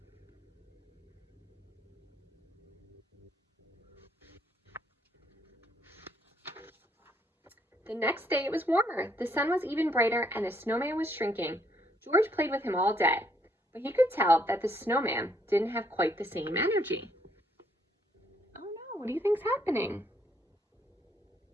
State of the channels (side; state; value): both; normal; correlation 0.70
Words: The next day it was warmer. The sun was even brighter and the snowman was shrinking. George played with him all day, but he could tell that the snowman didn't have quite the same energy. Oh no, what do you think's happening?